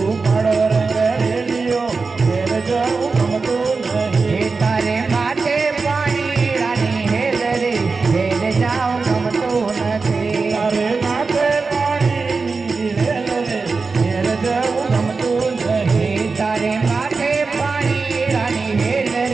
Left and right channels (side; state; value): left; quieter; 4.3 dB